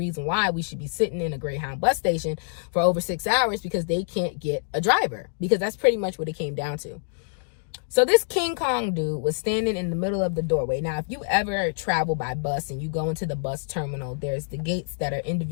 why we should be sitting in a Greyhound bus station for over 6 hours because they can't get a driver. Because that's pretty much what it came down to. So this King Kong dude was standing in the middle of the doorway. Now, if you ever travel by bus and you go into the bus terminal, there's the gates that are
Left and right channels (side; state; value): right; silent; digital silence